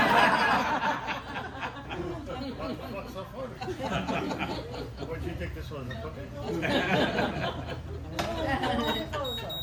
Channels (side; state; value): both; identical; correlation 1.00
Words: the fuck's so funny? What do you think this was, a cookie?